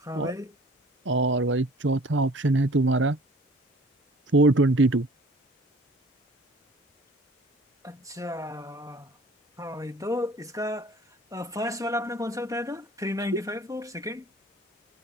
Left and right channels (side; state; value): both; normal; correlation 0.49